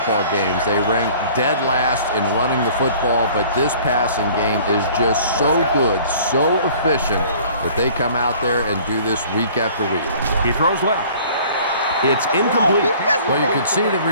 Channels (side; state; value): both; inverted; correlation -0.50